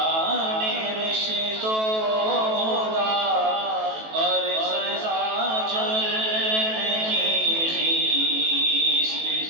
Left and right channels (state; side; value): late; left; 18 ms